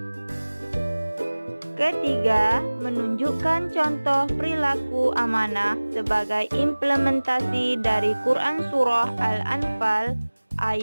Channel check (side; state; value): both; inverted; correlation -1.00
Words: Ketiga, menunjukkan contoh perilaku amanah sebagai implementasi dari Quran Surah Al-Anfal